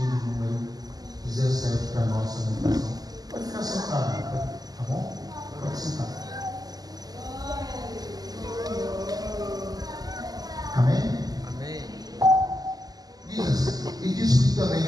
de número 17 para a nossa meditação. Pode ficar sentado, tá bom? Pode sentar. Amém? Amém. Diz assim: e disse-lhe também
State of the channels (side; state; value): left; late; 0.18 ms